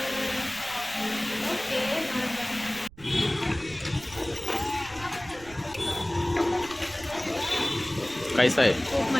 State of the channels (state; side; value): noise; right; rumble, 20 dB below the sound